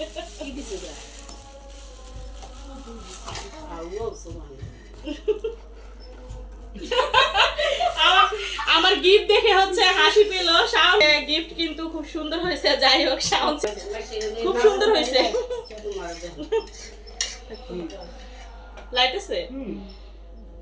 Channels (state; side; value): identical; both; correlation 1.00